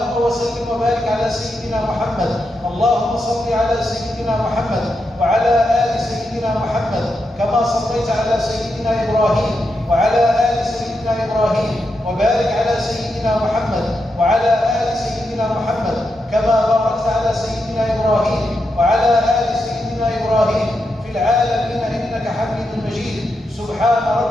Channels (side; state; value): both; normal; correlation 0.85